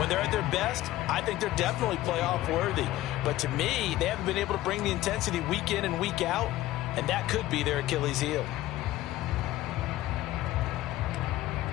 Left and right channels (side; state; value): right; quieter; 15.6 dB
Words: they're at their best, I think they're definitely playoff worthy. But to me, they haven't been able to bring the intensity week in and week out, and that could be their Achilles heel.